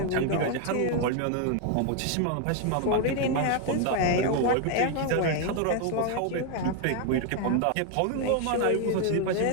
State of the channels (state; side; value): different; both; correlation 0.01